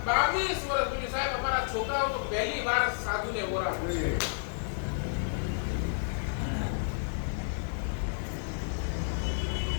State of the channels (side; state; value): right; silent; digital silence